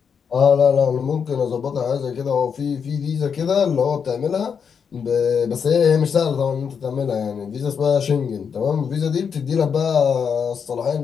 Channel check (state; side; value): quieter; right; 6.7 dB